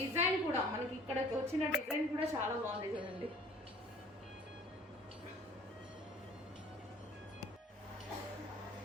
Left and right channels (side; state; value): both; normal; correlation 0.50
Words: కూడా మనకి ఇక్కడ వచ్చిన డిజైన్ కూడా చాలా బాగుంది చూడండి.